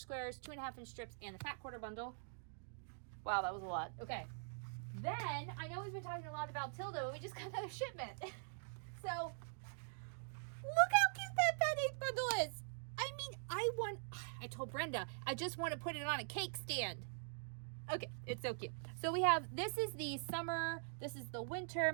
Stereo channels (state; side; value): silent; left; digital silence